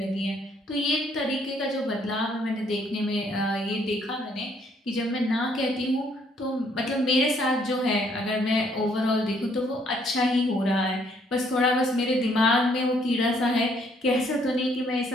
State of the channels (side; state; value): both; normal; correlation 0.67